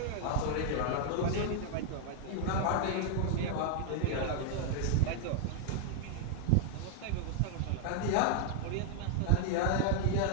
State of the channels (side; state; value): both; different; correlation 0.00